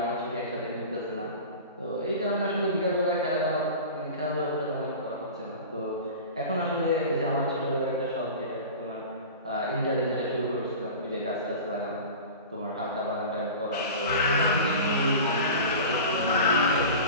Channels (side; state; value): both; inverted; correlation -0.34